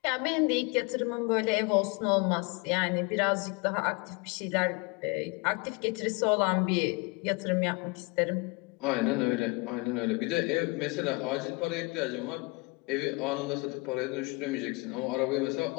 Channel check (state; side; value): quieter; right; 28.0 dB